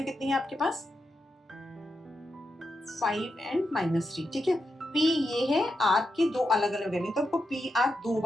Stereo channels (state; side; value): normal; both; correlation 0.86